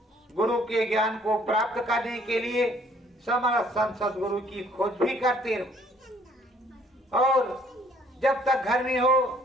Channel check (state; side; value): normal; both; correlation 0.61